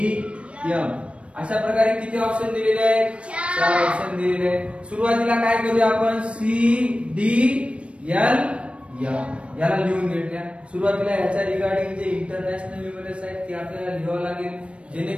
अशा प्रकारे किती ऑप्शन दिलेले आहेत? 4 ऑप्शन दिलेले आहेत. सुरुवातीला काय करूया आपण? CDL याला लिहून घेतल्या. सुरुवातीला याच्या रिगार्डिंग जे इंटरनॅशनल न्यूमरल्स आहेत ते आपल्याला लिहावं लागेल,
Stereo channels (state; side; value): late; left; 0.060 ms